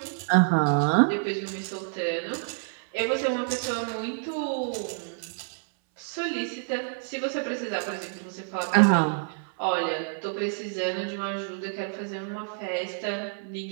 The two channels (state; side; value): silent; left; 59 dB below the other